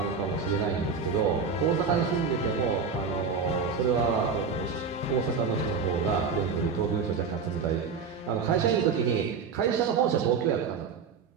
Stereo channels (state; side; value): quieter; left; 5.5 dB